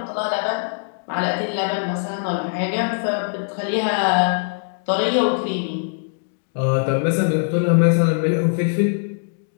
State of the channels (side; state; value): right; silent; digital silence